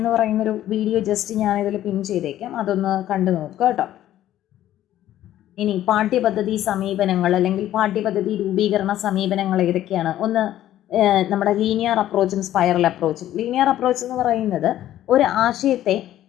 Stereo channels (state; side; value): quieter; right; 12.8 dB